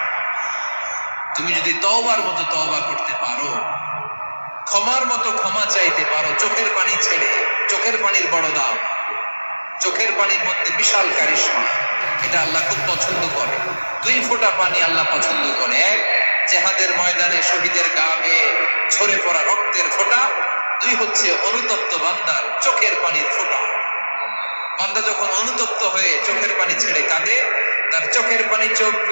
তুমি যদি তওবার মতো তওবা করতে পারো, ক্ষমার মতো ক্ষমা চাইতে পারো, চোখের পানি ছেড়ে, চোখের পানির বড় দাম, চোখের পানির মধ্যে বিশাল কারিশমা, এটা আল্লাহ খুব পছন্দ করে। 2 ফোঁটা পানি আল্লাহ পছন্দ করে। এক, জিহাদের ময়দানে শহীদের গা বেয়ে ঝরে পড়া রক্তের ফোঁটা। 2 হচ্ছে অনুতপ্ত বান্দার চোখের পানির ফোঁটা। বান্দা যখন অনুতপ্ত হয়ে চোখের পানি ছেড়ে কাঁদে, তার চোখের পানি চোখ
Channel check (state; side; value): inverted; both; correlation -1.00